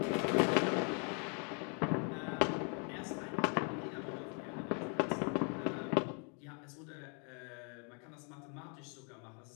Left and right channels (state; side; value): quieter; right; 38.1 dB